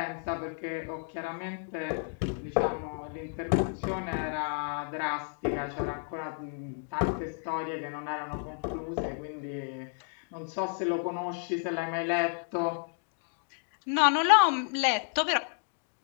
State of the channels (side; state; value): right; silent; 57 dB below the other